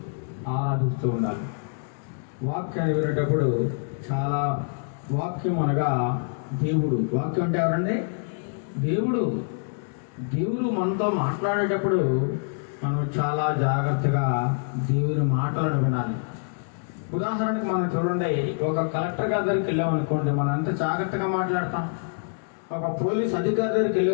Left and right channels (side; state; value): right; silent; digital silence